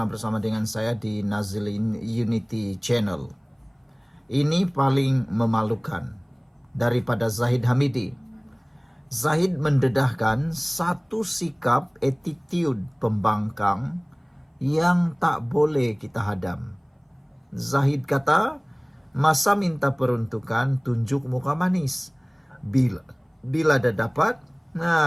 bersama dengan saya di Nazilin Unity Channel. Ini paling memalukan daripada Zahid Hamidi. Zahid mendedahkan satu sikap attitude pembangkang yang tak boleh kita hadam. Zahid kata, masa minta peruntukan tunjuk muka manis. Bila dah dapat,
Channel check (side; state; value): both; identical; correlation 1.00